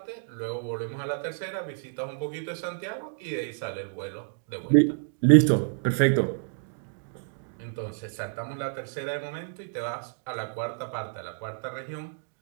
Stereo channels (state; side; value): silent; left; digital silence